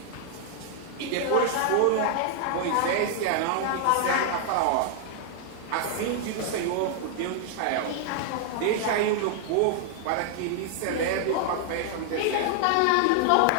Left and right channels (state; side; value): different; both; correlation 0.00